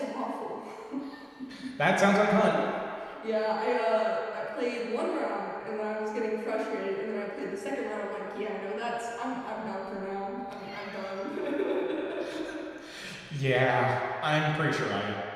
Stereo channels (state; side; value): identical; both; correlation 1.00